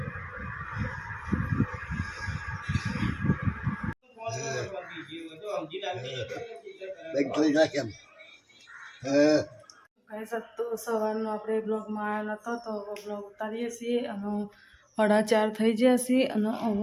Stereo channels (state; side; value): identical; both; correlation 1.00